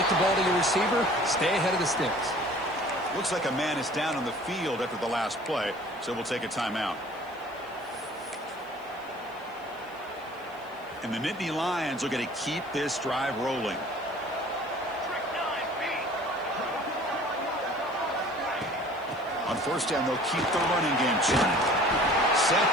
the ball to your receiver, stay ahead of the sticks. Looks like a man is down on the field after the last play, so we'll take a timeout. And the Nittany Lions are going to keep this drive rolling. On first down, they'll keep the running game churning.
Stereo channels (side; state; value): left; noise; hiss, 28 dB below the sound